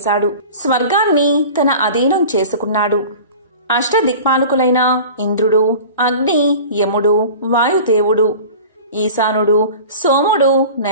స్వర్గాన్ని తన అధీనం చేసుకున్నాడు. అష్టదిక్పాలకులైన ఇంద్రుడు, అగ్ని, యముడు, వాయుదేవుడు, ఈశానుడు, సోముడు,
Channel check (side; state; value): both; inverted; correlation -0.39